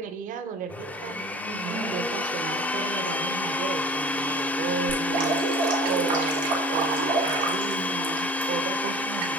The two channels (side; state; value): both; normal; correlation 0.44